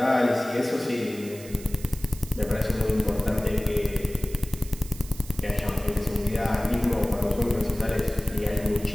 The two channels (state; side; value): noise; right; hiss, 17 dB below the sound